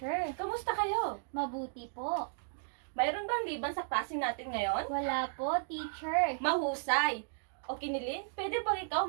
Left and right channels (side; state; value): left; silent; digital silence